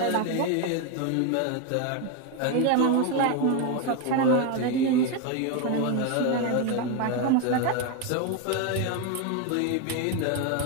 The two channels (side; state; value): both; different; correlation 0.02